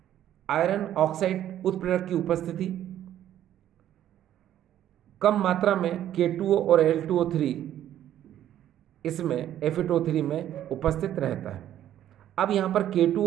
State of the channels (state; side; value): quieter; left; 11.6 dB